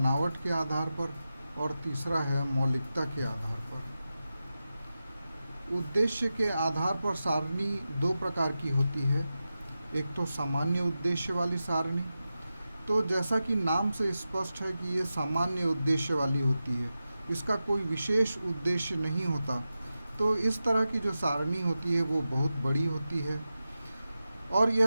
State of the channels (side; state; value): both; inverted; correlation -0.92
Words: के आधार पर और तीसरा है मौलिकता के आधार पर। उद्देश्य के आधार पर सारणी 2 प्रकार की होती है। एक तो सामान्य उद्देश्य वाली सारणी। तो जैसा कि नाम से स्पष्ट है कि ये सामान्य उद्देश्य वाली होती है, इसका कोई विशेष उद्देश्य नहीं होता। तो इस तरह की जो सारणी होती है वो बहुत बड़ी होती है और